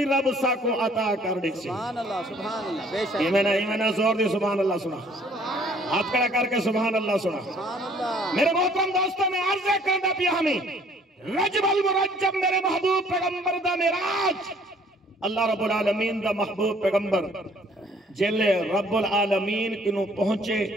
رب ساکو عطا کر دے سی. سبحان اللہ بے شک. ایمانہ زور دی سبحان اللہ سنا. ہاتھ کھڑا کر کے سبحان اللہ سنا. میرے محترم دوستوں میں عرض کرنا پیا ہمیں رجب المرجب میرے محبوب پیغمبر دا معراج. اللہ رب العالمین دا محبوب پیغمبر جلے رب العالمین کنو پہنچے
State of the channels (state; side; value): normal; both; correlation 0.58